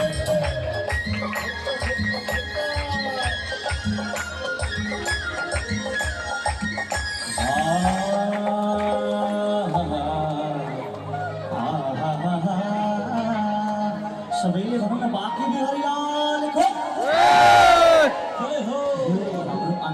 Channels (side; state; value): both; identical; correlation 1.00